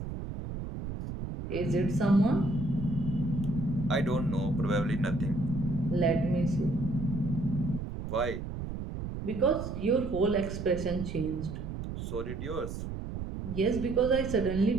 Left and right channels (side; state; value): right; noise; rumble, 6 dB below the sound